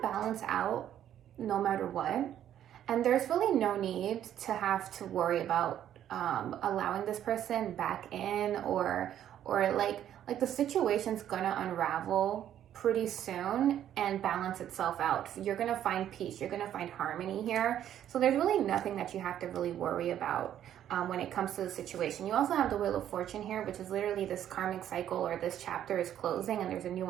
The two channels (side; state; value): left; quieter; 10.8 dB